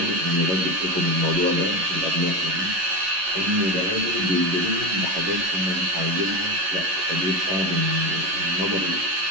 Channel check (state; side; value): late; left; 11 ms